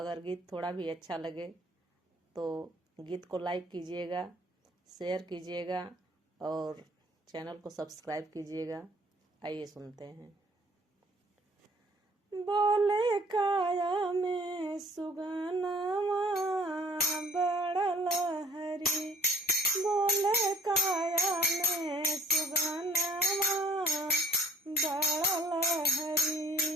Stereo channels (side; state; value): both; normal; correlation 0.54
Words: गीत थोड़ा भी अच्छा लगे तो गीत को लाइक कीजिएगा, शेयर कीजिएगा और चैनल को सब्सक्राइब कीजिएगा। आइए सुनते हैं। बोले काया में सुगनमा बड़ा लहरी, बोले काया में सुगनमा बड़ा